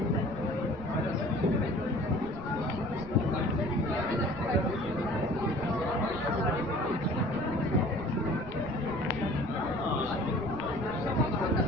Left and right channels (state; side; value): noise; right; rumble, 14 dB below the sound